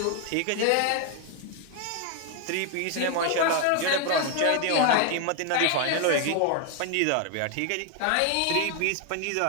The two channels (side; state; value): both; different; correlation 0.00